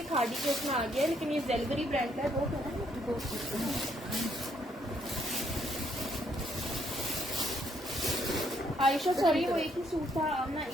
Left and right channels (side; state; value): both; normal; correlation 0.71